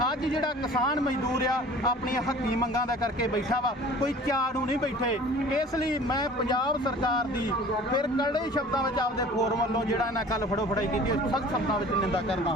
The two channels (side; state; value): both; normal; correlation 0.45